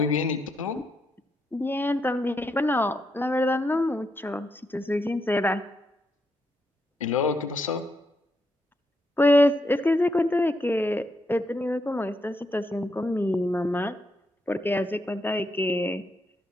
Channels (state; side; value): normal; both; correlation 0.80